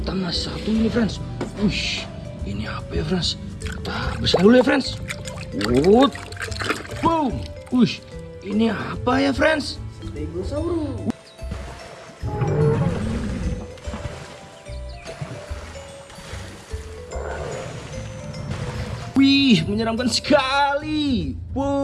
masih satu ini friends. Wih, ini apa ya friends? Kita bersihkan dulu ya friends. Wood. Boom. Wih, ini apa ya friends? Stegosaurus. Wih, menyeramkan sekali.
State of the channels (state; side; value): identical; both; correlation 1.00